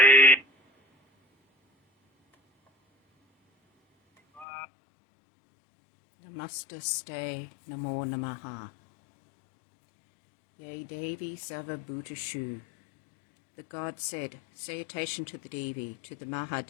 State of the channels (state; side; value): drops out; right; at 4.5 s